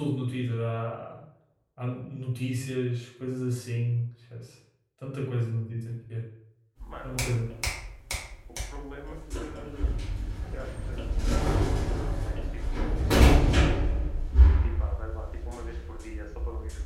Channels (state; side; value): identical; both; correlation 1.00